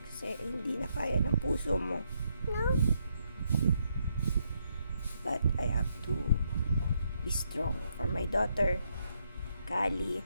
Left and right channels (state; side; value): inverted; both; correlation -0.77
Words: Kasi hindi na kaya ng puso mo. No? But I have to be strong for my daughter, Kali.